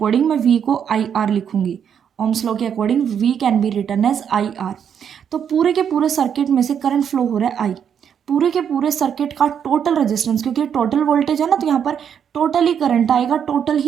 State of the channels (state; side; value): quieter; left; 8.1 dB